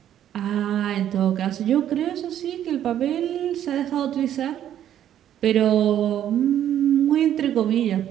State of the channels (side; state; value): left; quieter; 10.8 dB